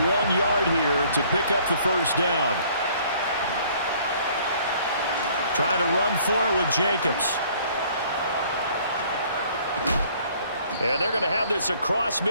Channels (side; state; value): both; inverted; correlation -0.58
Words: yard here to pick up the first down. Trying to run for it with Jacobs. And they're going to have this across